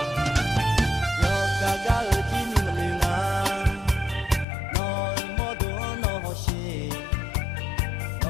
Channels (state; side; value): drops out; right; at 4.5 s